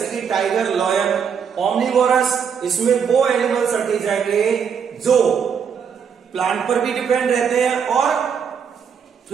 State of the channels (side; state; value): left; quieter; 7.0 dB